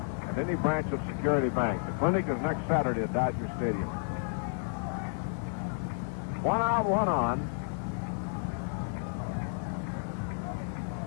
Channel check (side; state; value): right; silent; digital silence